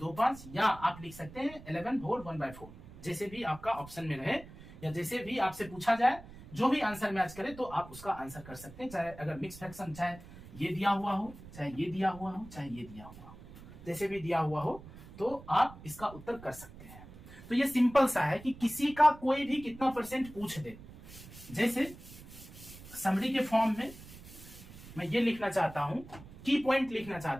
या आप लिख सकते हैं 11 होल 1/4, जैसे भी आपका ऑप्शन में रहे या जैसे भी आपसे पूछा जाए, जो भी आंसर मैच करे तो आप उसका आंसर कर सकते हैं। चाहे अगर मिक्स फ्रैक्शन, चाहे ये दिया हुआ हो, चाहे ये दिया हुआ हो, चाहे ये दिया हुआ हो, जैसे भी दिया हुआ हो तो आप इसका उत्तर कर सकते हैं। तो ये सिंपल सा है कि किसी का कोई भी कितना परसेंट पूछ दे, जैसे समरी के फॉर्म में मैं ये लिखना चाहता हूं, की पॉइंट लिखना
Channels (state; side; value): noise; right; rumble, 17 dB below the sound